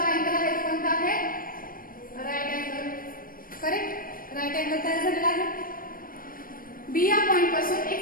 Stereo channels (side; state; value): right; late; 0.41 ms